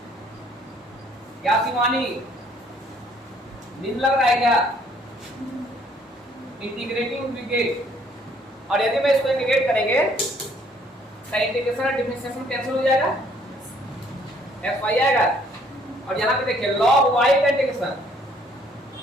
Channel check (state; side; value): normal; both; correlation 0.63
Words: क्या शिवानी नींद लग रहा है क्या? इंटीग्रेटिंग इंटीग्रेट, और यदि मैं इसको इंटीग्रेट करेंगे तो इंटीग्रेशन और डिफरेंशिएशन कैंसिल हो जाएगा, एक्स वाई आएगा। और यहाँ पे देखिए लॉग वाई का इंटीग्रेशन